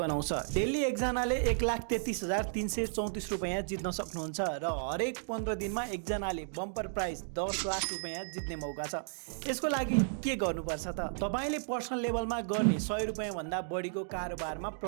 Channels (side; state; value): left; silent; digital silence